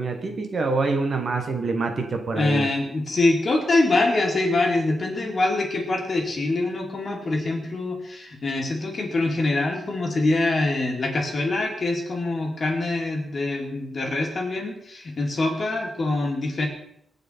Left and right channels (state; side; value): normal; both; correlation 0.88